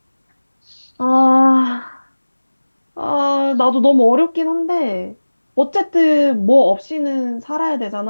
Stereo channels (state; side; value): inverted; both; correlation -1.00